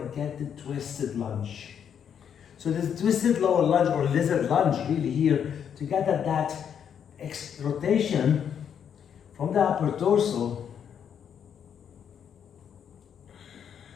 get the twisted lunge. So this twisted lower lunge or lizard lunge really here, to get that rotation from the upper torso.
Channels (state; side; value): quieter; right; 8.2 dB